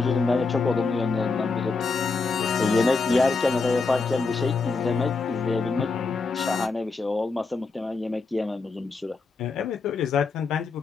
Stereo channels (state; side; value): quieter; right; 4.2 dB